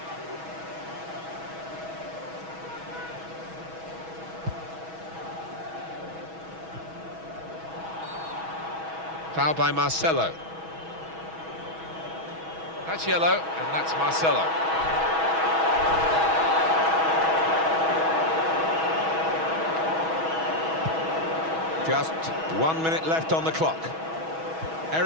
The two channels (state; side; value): late; left; 6.2 ms